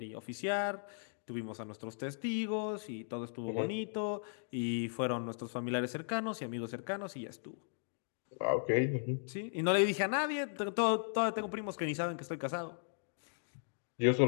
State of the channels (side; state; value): right; silent; digital silence